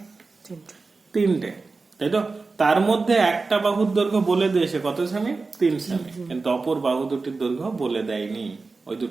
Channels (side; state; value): left; quieter; 4.0 dB